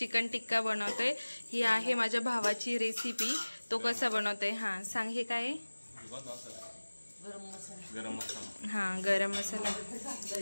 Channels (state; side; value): inverted; both; correlation -1.00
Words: टिक्का बनवतोय. ही आहे माझ्या भावाची रेसिपी. तो कसा बनवतोय सांग. हे काय गरम मसाला.